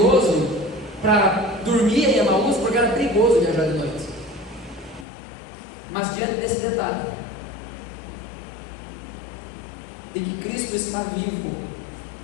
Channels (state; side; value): drops out; right; at 5.1 s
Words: para dormir em Emaús, porque era perigoso perigoso viajar de noite. Mas diante desse detalhe, de que Cristo está vivo,